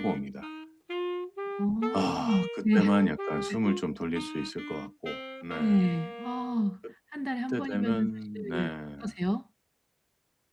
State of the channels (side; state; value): both; identical; correlation 1.00